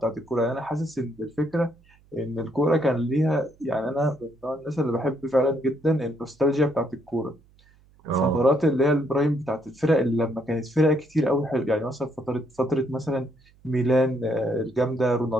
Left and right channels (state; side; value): noise; right; hum, 30 dB below the sound